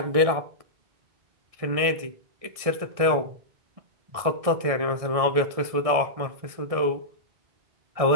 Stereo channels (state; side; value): late; left; 1.7 ms